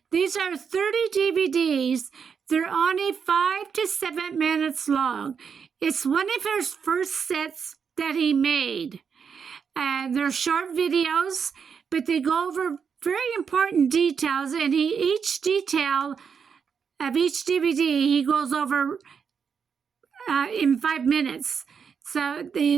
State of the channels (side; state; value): left; quieter; 6.5 dB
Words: These are 30 DVDs. They're only 5 to 7 minutes long. It's one of his first sets that he made. They're short videos, but they go over very important details, and each detail of each DVD he goes over in 5 minutes. So